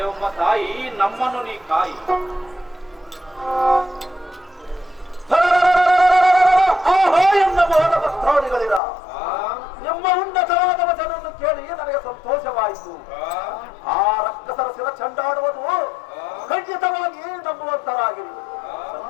ತಾಯಿ, ನಮ್ಮನ್ನು ನೀ ಕಾಯಿ. ಎನ್ನ ಮೋಹನ ಭಕ್ತಾದಿಗಳಿರ ನಿಮ್ಮ ಉನ್ನತವಾದ ವಚನವನ್ನು ಕೇಳಿ ನನಗೆ ಸಂತೋಷವಾಯಿತು. ಆ ರಕ್ಕಸರ ಶಿರ ಚಂಡಾಡುವುದು ಖಂಡಿತವಾಗಿ ನಂಬುವಂತರಾಗಿರಿ.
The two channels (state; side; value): drops out; right; at 8.8 s